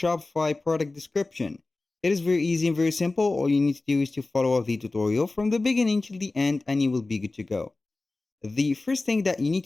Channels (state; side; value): quieter; right; 3.2 dB